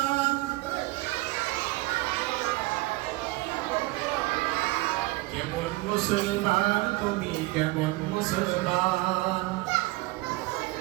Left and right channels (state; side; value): quieter; left; 21.6 dB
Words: কেমন মুসলমান তুমি কেমন মুসলমান